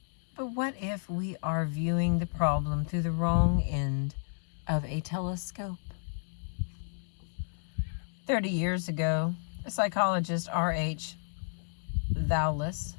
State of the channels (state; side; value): silent; right; 57 dB below the other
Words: But what if we are viewing the problem through the wrong end of a telescope? 30 years ago, a psychologist, R.H. Thoulis,